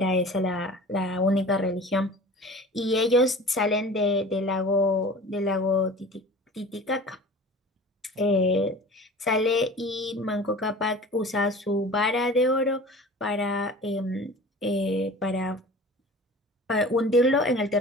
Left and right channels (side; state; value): both; normal; correlation 0.40